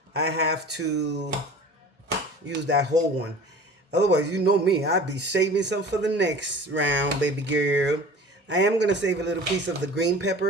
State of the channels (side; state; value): both; normal; correlation 0.41